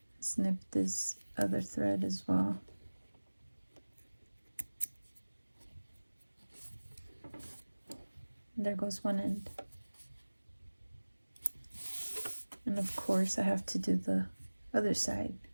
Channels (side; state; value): both; inverted; correlation -1.00